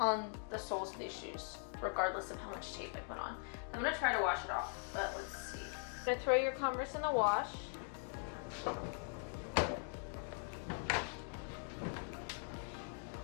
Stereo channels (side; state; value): right; silent; 50 dB below the other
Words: on the soles of these shoes, regardless of how much tape I put on. I'm gonna try to wash it off, but let's see. I'm gonna throw your Converse in the wash.